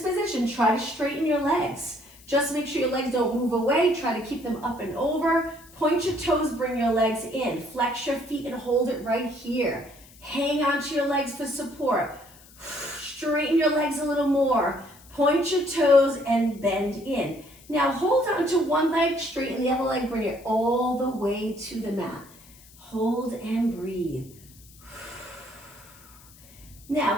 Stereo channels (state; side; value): noise; left; hiss, 24 dB below the sound